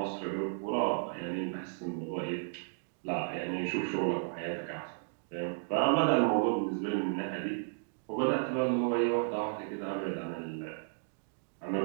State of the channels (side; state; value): left; silent; digital silence